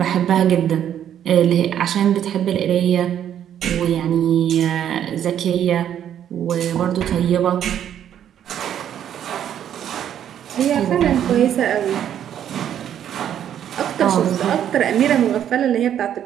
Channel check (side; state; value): left; quieter; 10.0 dB